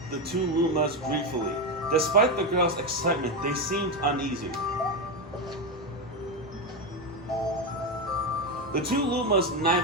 the two Lumas gleefully. Despite the girl's excitement, they seemed uneasy. The two Lumas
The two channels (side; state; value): both; normal; correlation 0.11